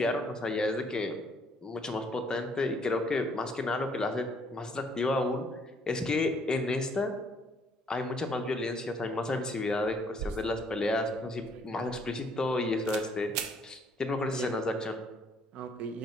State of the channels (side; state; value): both; normal; correlation 0.65